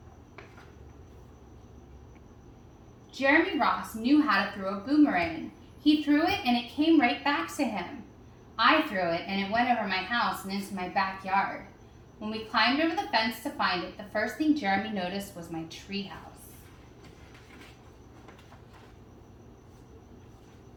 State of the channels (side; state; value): both; identical; correlation 1.00